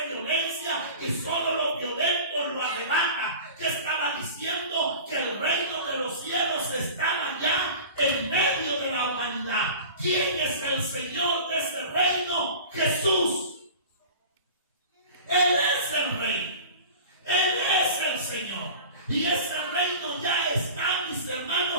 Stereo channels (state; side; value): inverted; both; correlation -0.37